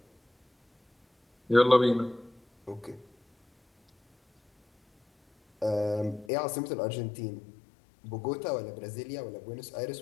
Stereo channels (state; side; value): drops out; right; at 6.3 s